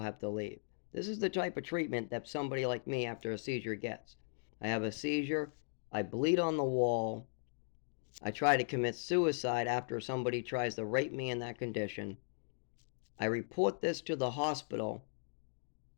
have to leave. This is the type of treatment that somebody like me after a seizure gets. I have a seizure. I bleed on the wall. I try to commit suicide after somebody tries to rape me in that condition. I report this to the hospital,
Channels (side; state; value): right; silent; digital silence